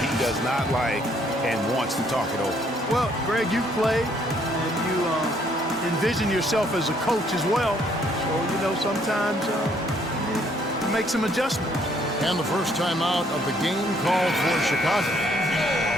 he does not like and wants to talk it over. Well, Greg, you played, and you envision yourself as a coach as well. So, sometimes you make some adjustments. And the first time out of the game called for Chicago.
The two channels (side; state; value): both; normal; correlation 0.66